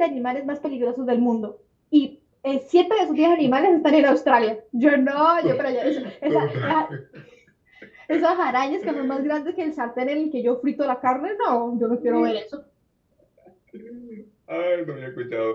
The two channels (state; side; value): identical; both; correlation 1.00